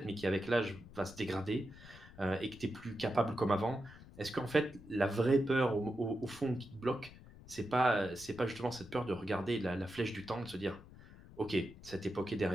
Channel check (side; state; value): left; noise; rumble, 19 dB below the sound